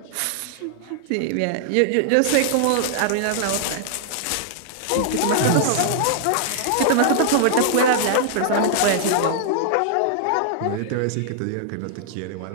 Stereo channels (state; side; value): different; both; correlation -0.01